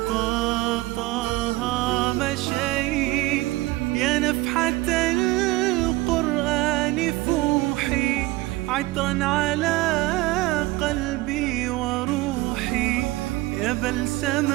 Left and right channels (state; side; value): quieter; left; 19.7 dB